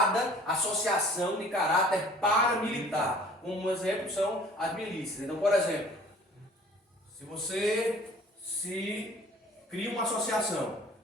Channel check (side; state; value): both; normal; correlation 0.50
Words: associação de caráter paramilitar. Um exemplo são as milícias. Então, por exemplo, se você cria uma associação